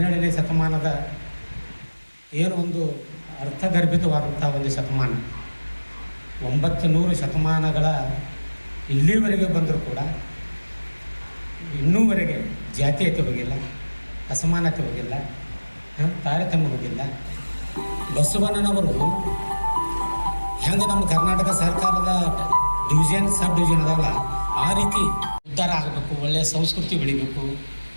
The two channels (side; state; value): both; inverted; correlation -1.00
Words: ಶತಮಾನದ ಏನು ಒಂದು ಅರ್ಥಗರ್ಭಿತವಾದಂಥ ಒಂದು ಶತಮಾನ. 900 ಶತಮಾನಗಳ ಇಲ್ಲಿವರೆಗೆ ಬಂದರೂ ಕೂಡ ಇನ್ನೂವರೆಗೆ ಜಾತೀಯತೆ ಹೋಗಿಲ್ಲ, ಅಸಮಾನತೆ ಹೋಗಿಲ್ಲ, ತಾರತಮ್ಯ ಹೋಗಿಲ್ಲ. ಬಸವಣ್ಣನವರು ಹೆಂಗೆ ನಮ್ಮ ಕರ್ನಾಟಕ ಸರ್ಕಾರದ ಡಿವಿಷನ್, ಸಬ್ ಡಿವಿಷನ್ ಅದಾವಲ್ಲ, ಆ ರೀತಿ ಉದ್ಧಾರ ಆಗಬೇಕು, ಒಳ್ಳೆಯ ಸಂಸ್ಕೃತಿ ಬೆಳಿಬೇಕು,